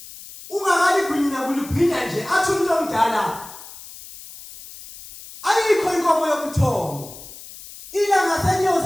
ungakaligwinya kuligwinya nje athi umuntu omdala ayikho inkomo yokuthongo ilanga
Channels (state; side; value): noise; left; hiss, 16 dB below the sound